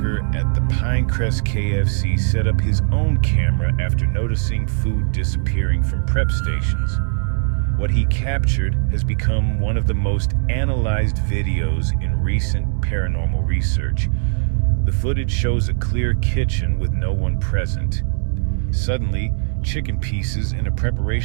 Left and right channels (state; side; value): silent; left; digital silence